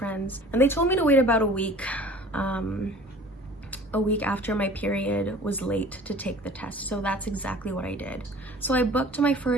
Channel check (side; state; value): both; normal; correlation 0.46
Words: and they told me to wait about a week after my period was late to take the test. So that's exactly what I did. So I booked my